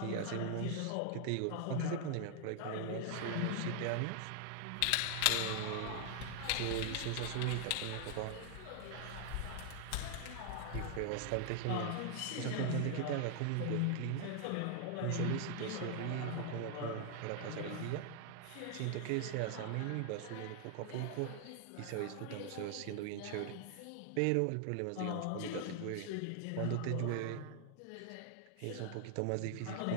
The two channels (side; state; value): both; different; correlation 0.00